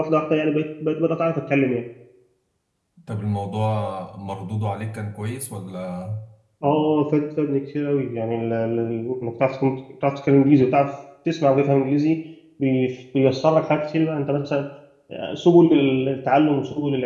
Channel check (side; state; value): both; identical; correlation 1.00